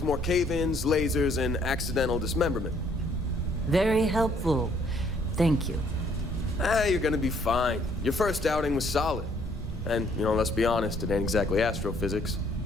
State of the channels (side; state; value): both; normal; correlation 0.65